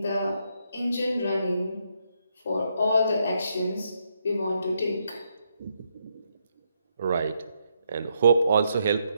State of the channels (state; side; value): inverted; both; correlation -0.78